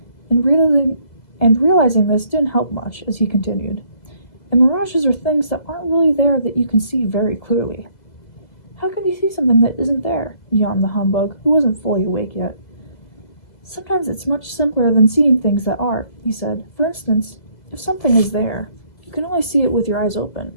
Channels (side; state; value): right; late; 2.0 ms